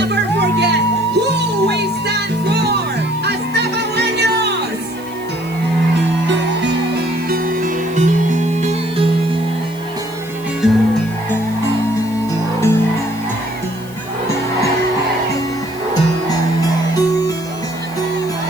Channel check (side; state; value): left; noise; hiss, 20 dB below the sound